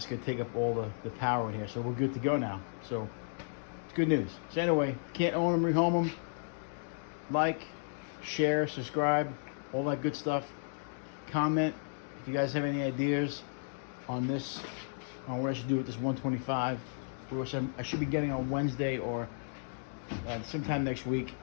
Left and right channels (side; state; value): right; silent; digital silence